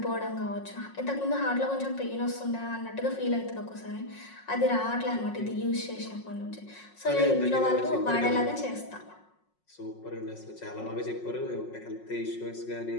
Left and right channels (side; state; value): right; late; 5.5 ms